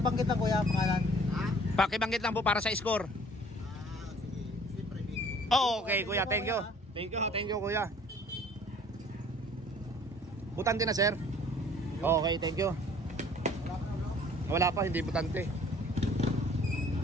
lang kuya, pangalan. Pakibanggit lang po para sa score. Oh, okay kuya, thank you. Thank you kuya. Butante na sir. Okay, thank you. Wala pa, hindi butante.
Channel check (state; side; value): normal; both; correlation 0.53